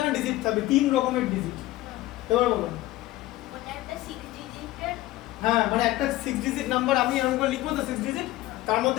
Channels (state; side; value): quieter; right; 16.8 dB